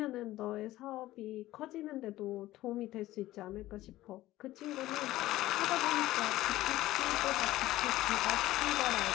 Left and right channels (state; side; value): quieter; right; 16.0 dB